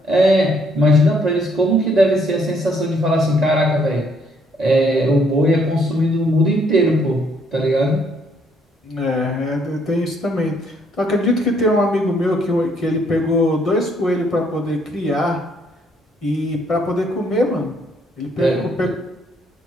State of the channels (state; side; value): normal; both; correlation 0.68